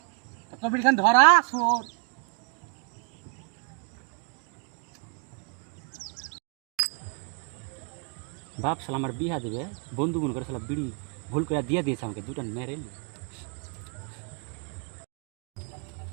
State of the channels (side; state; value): left; quieter; 38.8 dB